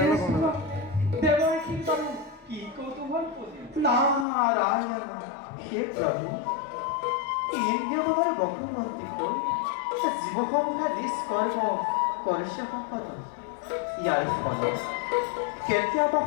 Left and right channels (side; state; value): right; drops out; at 4.2 s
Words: গম নাপায় দেৱৰ কীৰ্তন কি কৌতূহল নাৰায়ণ হে প্ৰভু ইন্দ্ৰিয়গণৰ বক্ৰৱৰ্তী কৈ জীৱসমূহে নিষ্কৰ্ম কৰিছে সম্পদ ইয়াৰ ফলত কেতিয়াবা